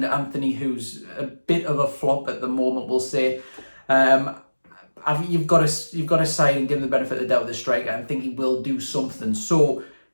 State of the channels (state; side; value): inverted; both; correlation -1.00